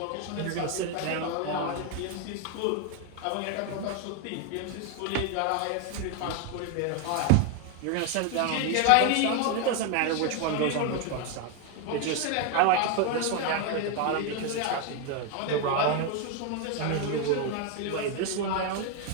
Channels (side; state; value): both; different; correlation 0.01